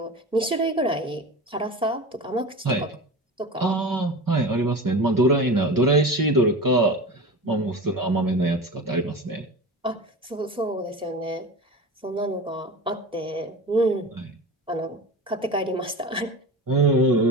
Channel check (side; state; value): both; normal; correlation 0.30